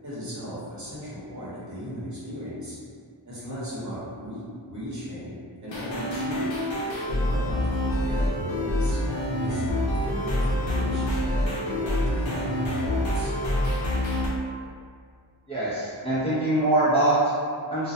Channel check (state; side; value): normal; both; correlation 0.37